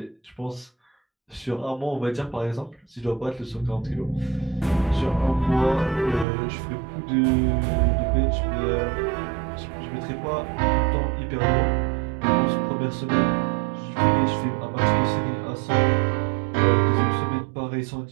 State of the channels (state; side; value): drops out; left; at 6.2 s